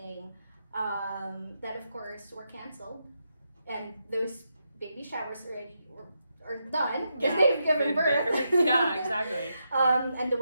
that of course were canceled, and those baby showers are done because they've given birth. Yeah, exactly. And the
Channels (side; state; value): both; inverted; correlation -0.84